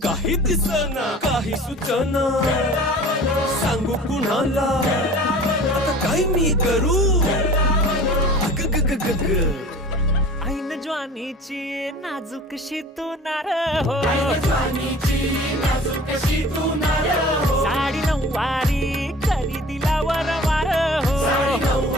काही दिसना काही सुचना सांगू कुणाला आता काय मी करू अग ग ग ग ग ऐन ज्वानीची नाजूकशी तू नार हो साडी नऊवारी करी दिला वरवार हो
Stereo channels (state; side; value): normal; both; correlation 0.44